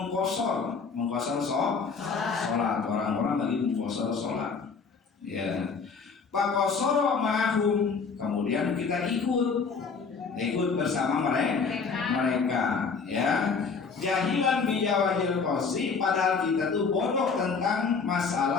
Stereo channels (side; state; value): right; quieter; 5.2 dB